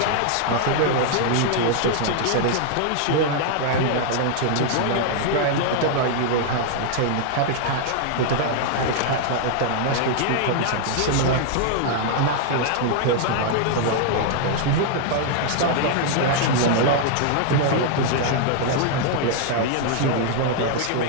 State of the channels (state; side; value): different; both; correlation 0.00